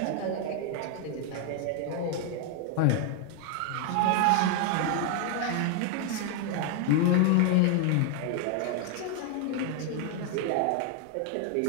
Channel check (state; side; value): different; both; correlation 0.00